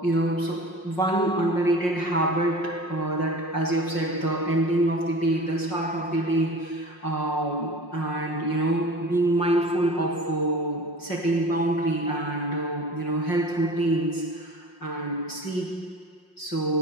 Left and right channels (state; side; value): late; right; 5.6 ms